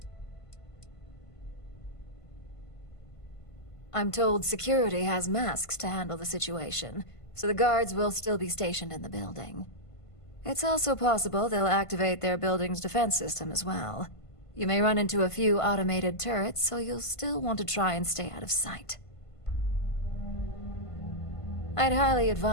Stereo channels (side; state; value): right; late; 1.5 ms